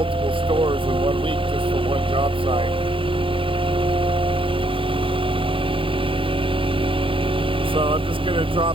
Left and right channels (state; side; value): late; left; 0.25 ms